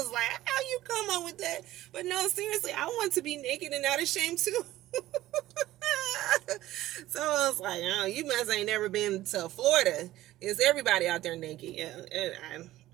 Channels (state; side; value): quieter; left; 15.4 dB